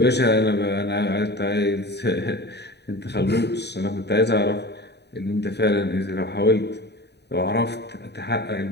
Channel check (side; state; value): right; late; 0.49 ms